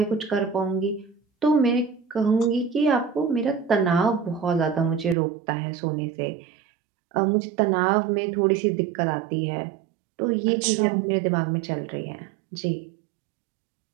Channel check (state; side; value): drops out; left; at 5.2 s